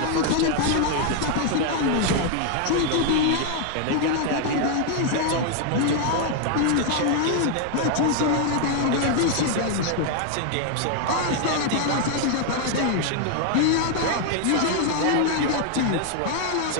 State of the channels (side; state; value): both; different; correlation 0.00